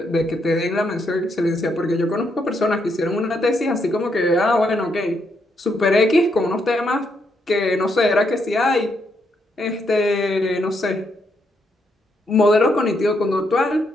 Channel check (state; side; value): normal; both; correlation 0.77